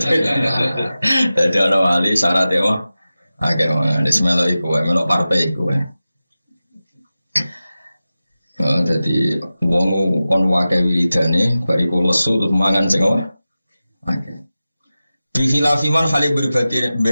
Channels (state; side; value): inverted; both; correlation -0.95